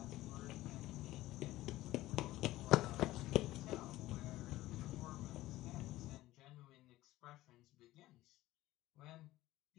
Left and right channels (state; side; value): quieter; right; 16.5 dB